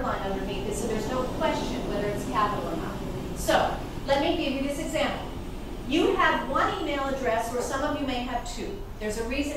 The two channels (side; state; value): both; identical; correlation 1.00